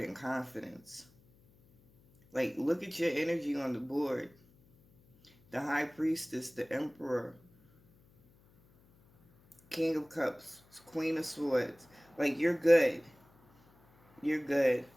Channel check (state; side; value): noise; left; hum, 30 dB below the sound